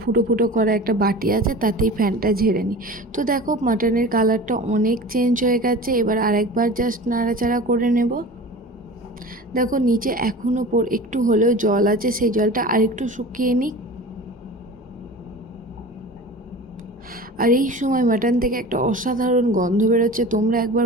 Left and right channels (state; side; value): normal; both; correlation 0.36